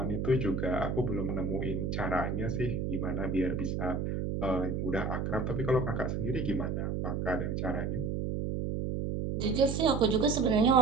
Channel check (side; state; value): right; noise; hum, 1 dB below the sound